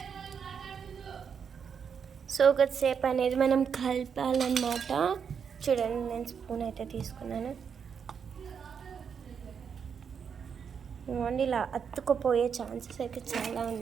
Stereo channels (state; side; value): quieter; left; 6.9 dB